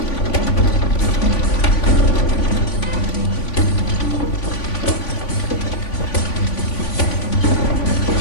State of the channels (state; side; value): late; right; 3.5 ms